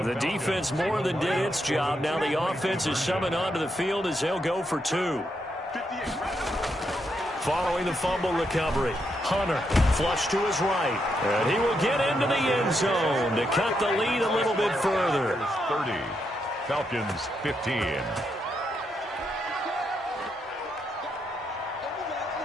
defense more than did its job. Now the offense is summoned onto the field as they'll go for 2. Following the fumble recovery, Hunter flush to his right. And he will get into the end zone to cut the lead a little bit further. 30, Falcons 15.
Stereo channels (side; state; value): both; normal; correlation 0.80